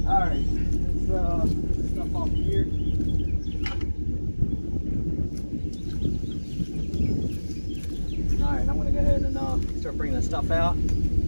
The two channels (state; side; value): inverted; both; correlation -1.00